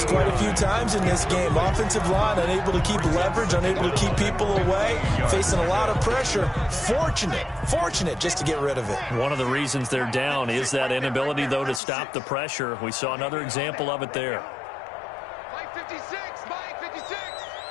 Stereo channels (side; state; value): right; drops out; at 11.8 s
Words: quite a few times in this game. Offensive line unable to keep leverage, unable to keep people away, facing a lot of pressure. Fortunate just to get rid of it. One of the reasons they're down is that inability, though, to stop the pressure. We saw another example of it there. Mike 56, Mike 56.